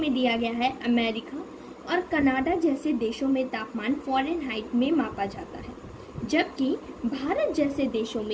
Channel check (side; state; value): both; identical; correlation 1.00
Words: दिया गया है, अमेरिका और कनाडा जैसे देशों में तापमान फ़ारेनहाइट में मापा जाता है, जबकि भारत जैसे देशों